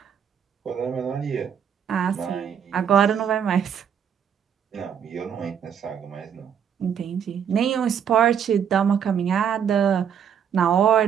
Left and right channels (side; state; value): left; quieter; 8.2 dB